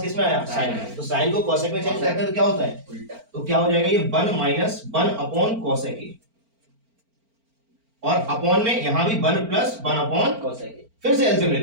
किस में आया? साइन में, तो साइन को कॉसेक में चेंज करते हैं तो क्या होता है? उल्टा। तो क्या हो जाएगा? ये 1 माइनस 1 अपॉन कॉसेक ए, और अपॉन में यहां भी 1 प्लस 1 अपॉन कॉसेक ए। फिर से एलसीएम ले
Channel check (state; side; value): late; left; 4.4 ms